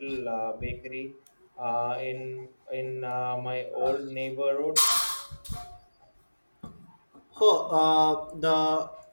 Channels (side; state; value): both; inverted; correlation -1.00